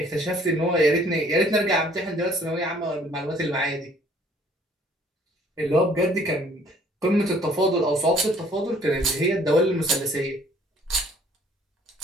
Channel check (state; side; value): normal; both; correlation 0.58